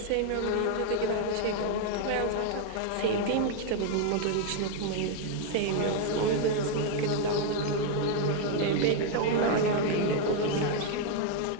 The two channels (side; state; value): both; different; correlation 0.00